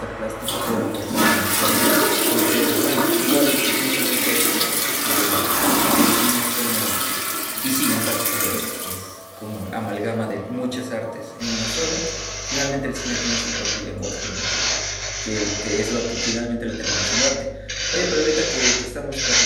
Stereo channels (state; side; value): identical; both; correlation 1.00